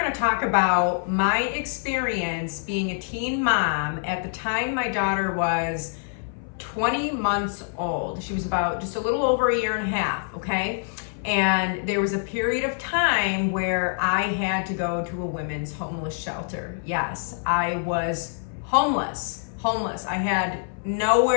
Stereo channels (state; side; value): silent; right; 58 dB below the other